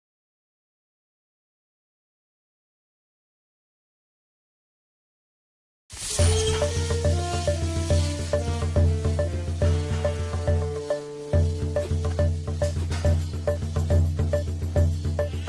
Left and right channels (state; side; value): identical; both; correlation 1.00